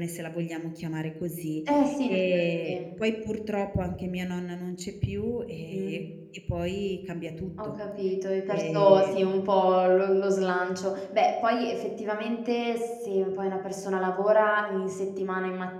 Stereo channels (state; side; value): identical; both; correlation 1.00